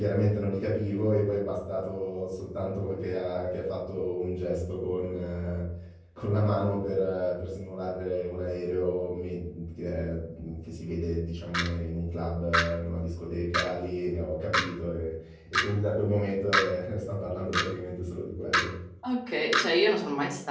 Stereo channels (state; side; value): identical; both; correlation 1.00